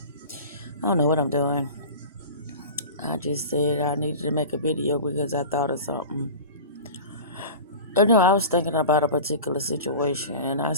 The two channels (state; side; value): inverted; both; correlation -0.34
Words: I don't know what I'm doing. I just said I needed to make a video because I thought of something. I was thinking about a particular situation, and I